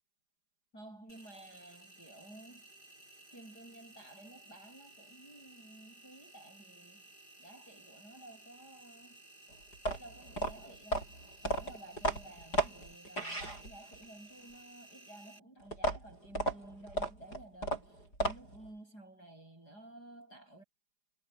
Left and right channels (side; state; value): right; late; 4.9 ms